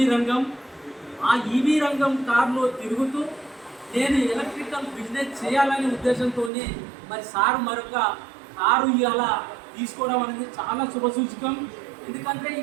రంగం. ఆ ఈవీ రంగం కారులో తిరుగుతూ నేను ఎలక్ట్రికల్ బిజినెస్ చేయాలనే ఉద్దేశంతో మరి సార్ మరొక కారు ఇవాళ తీసుకోవడం అనేది చాలా శుభసూచకం. ఎందుకంటే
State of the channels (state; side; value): drops out; left; at 6.5 s